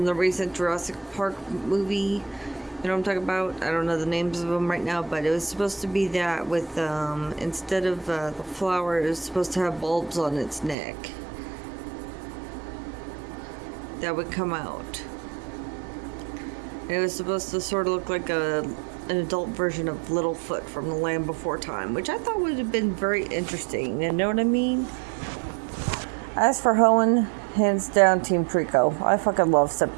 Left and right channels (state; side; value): drops out; left; at 10.8 s